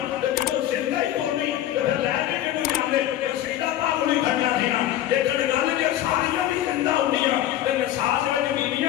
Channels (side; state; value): right; quieter; 12.6 dB